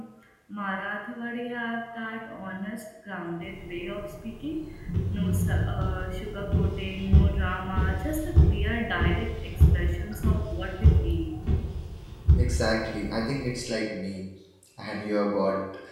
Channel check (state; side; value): identical; both; correlation 1.00